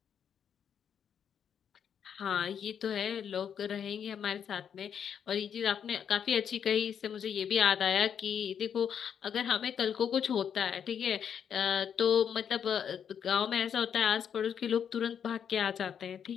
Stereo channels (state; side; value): quieter; right; 8.1 dB